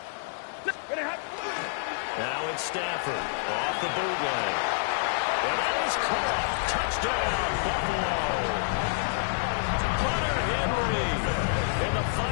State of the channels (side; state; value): right; silent; digital silence